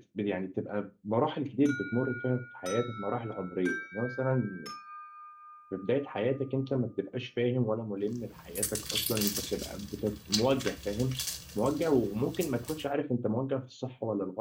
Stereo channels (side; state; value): both; identical; correlation 1.00